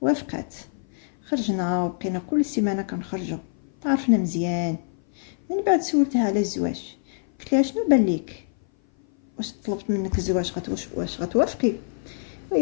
وافقات. خرجنا وبقينا كل سيمانه كنخرجوا، تعرفنا مزيان. من بعد سولتها على الزواج، قلت لها شنو بان ليك، واش طلبت منك الزواج واش غتوافقي؟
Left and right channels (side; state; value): right; silent; 57 dB below the other